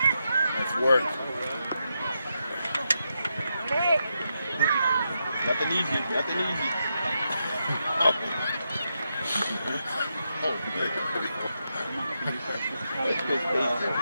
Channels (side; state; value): both; inverted; correlation -0.84